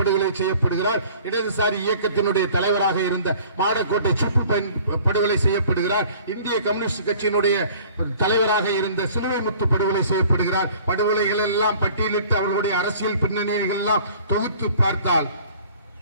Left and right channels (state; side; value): inverted; both; correlation -0.51